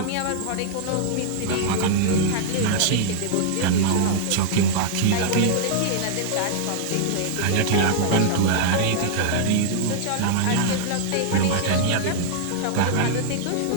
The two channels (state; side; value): different; both; correlation -0.01